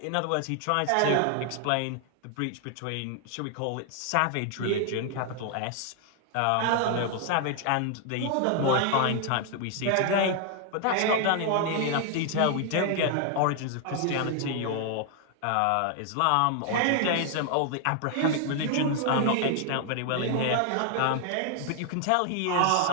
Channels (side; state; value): both; different; correlation 0.00